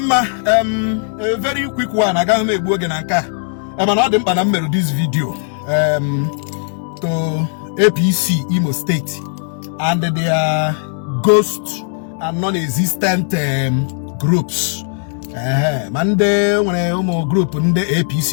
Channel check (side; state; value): right; silent; 66 dB below the other